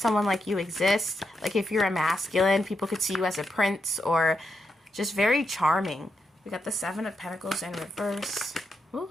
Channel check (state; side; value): normal; both; correlation 0.84